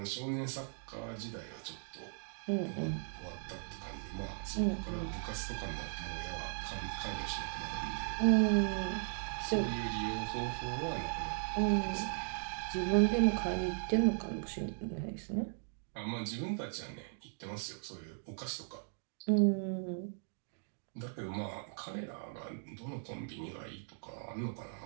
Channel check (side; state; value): left; silent; digital silence